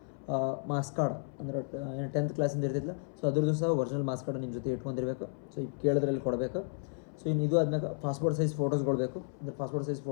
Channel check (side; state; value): right; silent; 56 dB below the other